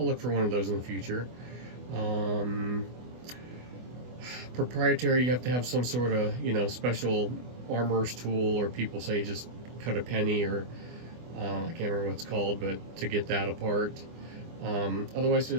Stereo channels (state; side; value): late; left; 24 ms